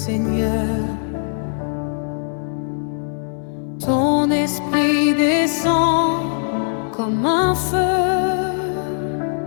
Ton esprit descend comme un feu.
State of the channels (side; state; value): right; silent; 60 dB below the other